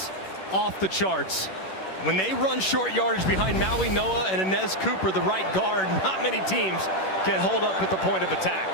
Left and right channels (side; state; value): right; late; 11 ms